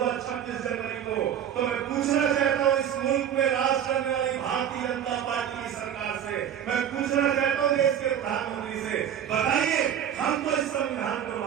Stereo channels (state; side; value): quieter; left; 9.5 dB